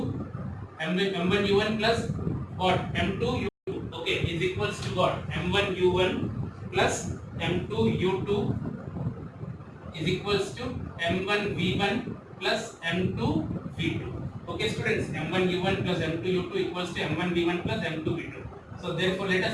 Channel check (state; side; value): identical; both; correlation 1.00